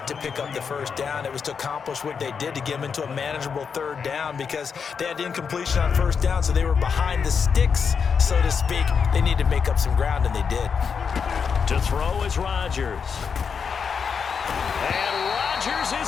to pick up the 1st down. It was to accomplish what they did to get them into a manageable 3rd down because they had incompletion on 1st down, so they were behind the sticks, so to speak. They needed to make up some ground, and they did. To throw is Rodgers.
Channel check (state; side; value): quieter; right; 6.2 dB